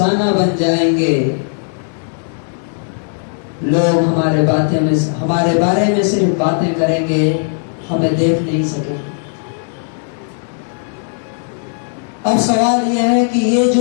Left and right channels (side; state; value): right; silent; digital silence